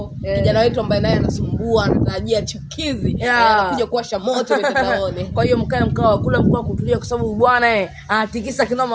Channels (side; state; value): both; identical; correlation 1.00